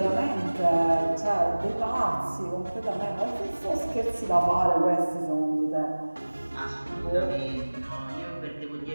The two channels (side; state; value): both; inverted; correlation -1.00